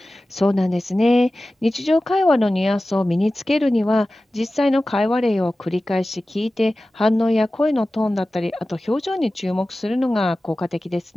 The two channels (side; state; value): both; normal; correlation 0.96